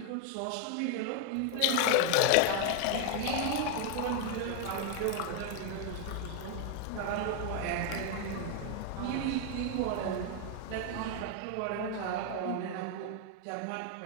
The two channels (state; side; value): different; both; correlation 0.01